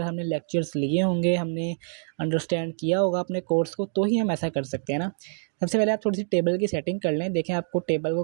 हमने लेक्चर्स लिए होंगे, हमने अंडरस्टैंड किया होगा अपने कोर्स को, तो ही हम ऐसा कर सकते हैं ना। सबसे पहले आप थोड़ी सी टेबल की सेटिंग कर लें, देखें आपको टेबल को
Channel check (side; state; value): left; silent; digital silence